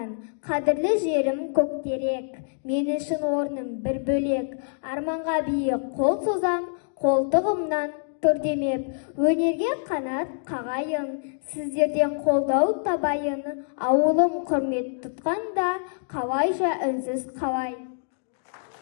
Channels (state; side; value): silent; right; digital silence